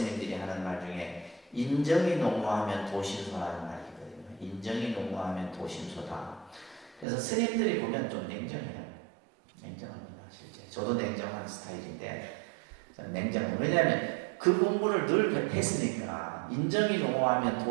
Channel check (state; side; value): drops out; left; at 7.1 s